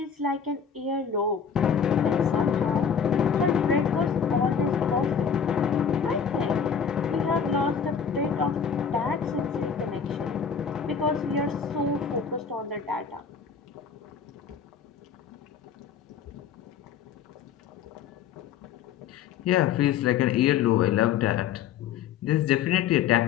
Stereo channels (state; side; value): quieter; right; 7.1 dB